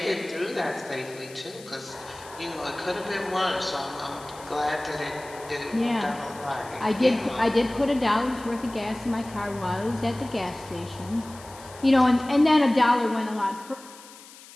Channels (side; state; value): left; noise; hiss, 19 dB below the sound